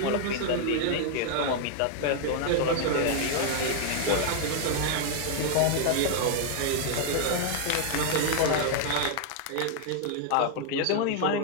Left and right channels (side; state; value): both; different; correlation 0.00